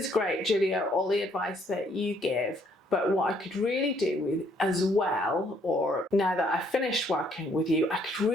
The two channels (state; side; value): normal; both; correlation 0.67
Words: great, Julia, all the advice that you give, But what I could really do with as well, or now that I've finished working with you, I could